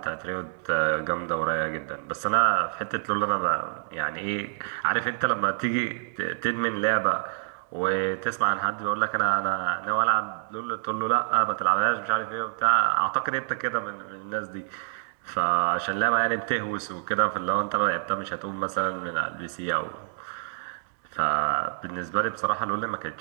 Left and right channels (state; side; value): silent; left; 60 dB below the other